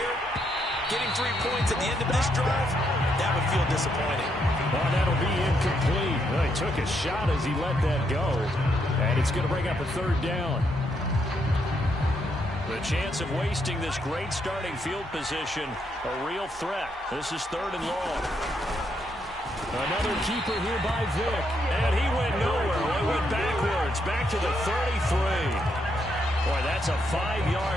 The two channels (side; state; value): both; normal; correlation 0.77